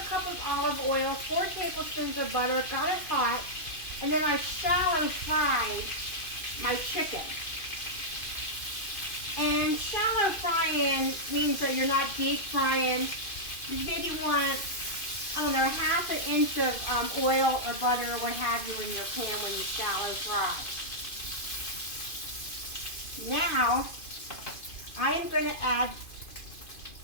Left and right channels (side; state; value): right; late; 2.5 ms